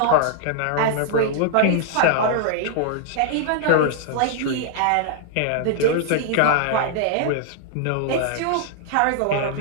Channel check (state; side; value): different; both; correlation -0.01